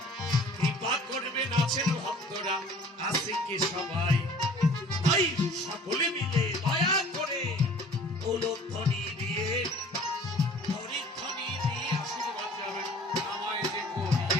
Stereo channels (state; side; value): normal; both; correlation 0.49